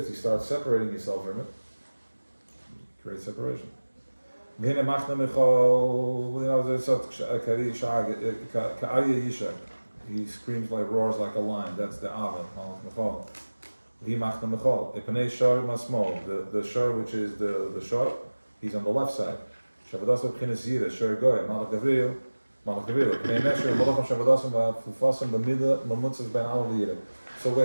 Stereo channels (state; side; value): inverted; both; correlation -1.00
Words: you start separating yourself from it. Create separation. He screams like, roars like a lion. That's the Ava. The shor, which is the shor, he's on the left side. So we